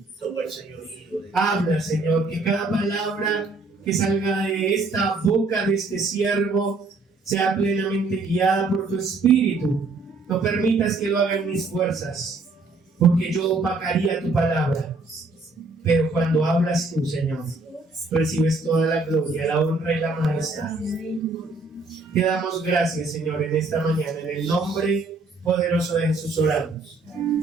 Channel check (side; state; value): left; quieter; 3.5 dB